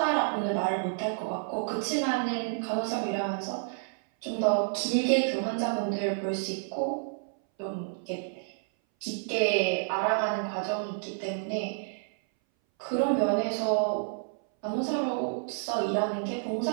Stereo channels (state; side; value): silent; left; 58 dB below the other